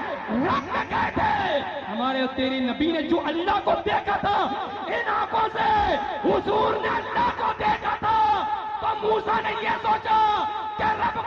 रख गए थे। हमारे तेरे नबी ने जो अल्लाह को देखा था, इन आंखों से हुजूर ने अल्लाह को देखा था, तो मूसा ने यह सोचा कि रब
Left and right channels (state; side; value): identical; both; correlation 1.00